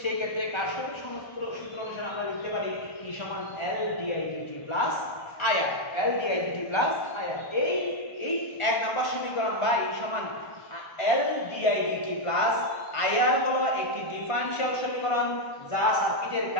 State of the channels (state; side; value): late; right; 1.4 ms